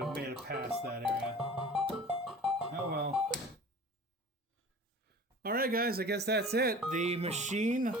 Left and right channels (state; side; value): normal; both; correlation 0.41